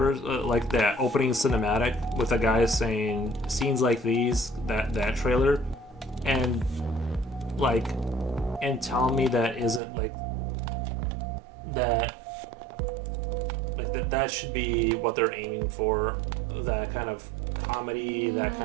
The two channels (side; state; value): left; drops out; at 9.8 s